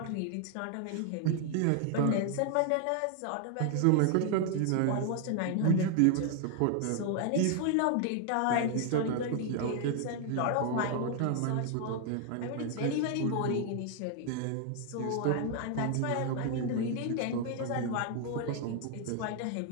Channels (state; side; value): different; both; correlation 0.00